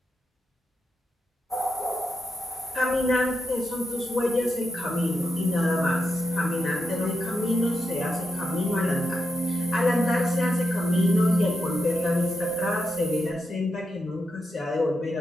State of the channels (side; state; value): both; normal; correlation 0.85